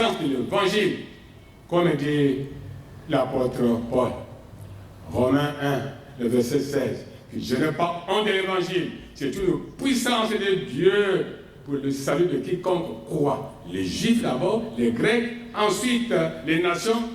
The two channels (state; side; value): identical; both; correlation 1.00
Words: de l'évangile, comme dit l'apôtre Paul. Romains 1, le verset 16, que je n'ai pas honte de l'évangile, c'est une puissance de Dieu pour le salut de quiconque croit. Les Juifs d'abord, les Grecs, ensuite les nations